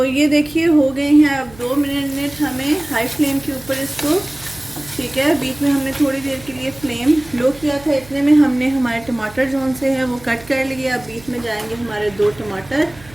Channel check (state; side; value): noise; right; hum, 22 dB below the sound